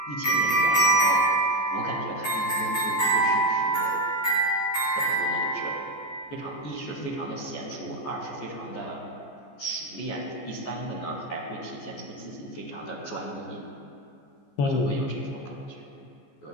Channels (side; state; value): right; late; 14 ms